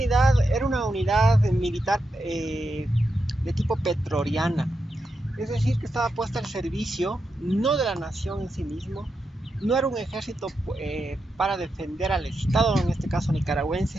era una unidad militar de tipo petroriana, es decir, que estaba puesta al servicio no de la nación en sí mismo, no era un ejército para defender al Estado, en este caso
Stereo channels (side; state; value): both; normal; correlation 0.86